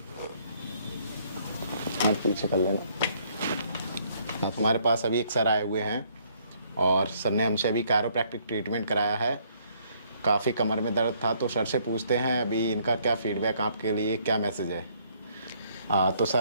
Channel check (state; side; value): inverted; both; correlation -0.65